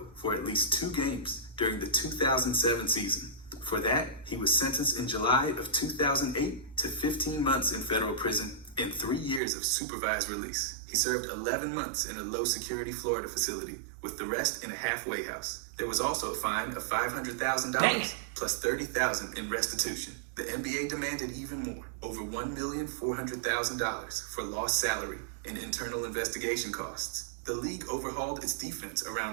for at least 2 games during the 2007 season. For that, he was sentenced in July of 2008 to 15 months in federal prison and 3 years of supervised release. He served 11 months in a low-security Florida facility, with the rest in a halfway house. There was also a fine of $500,000 plus $30,000 in restitution. The NBA demanded even more, over $1,400,000 for lost salary and internal investigation costs. The league overhauled its defense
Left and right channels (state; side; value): drops out; left; at 9.4 s